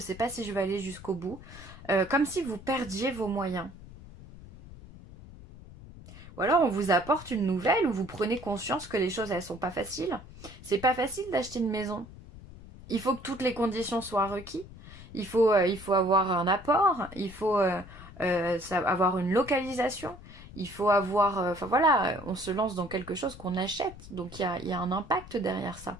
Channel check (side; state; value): left; noise; rumble, 17 dB below the sound